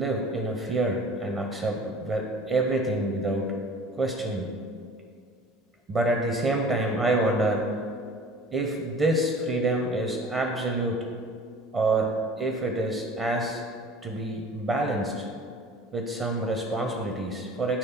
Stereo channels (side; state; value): both; normal; correlation 0.44